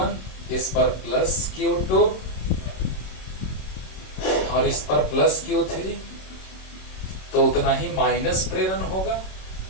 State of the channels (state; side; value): late; right; 26 ms